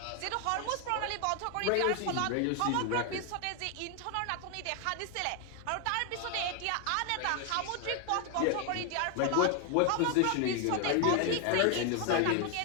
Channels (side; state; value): both; different; correlation 0.01